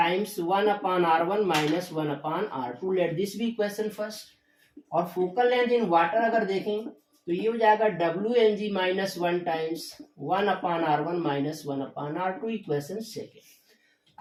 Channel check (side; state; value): both; identical; correlation 1.00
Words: 1/r1 - 1/r2। Let this be equation first. और फोकल लेंथ इन वाटर अगर देखें तो ये हो जाएगा Wng - 1 times 1/r1 - 1/r2, equation second.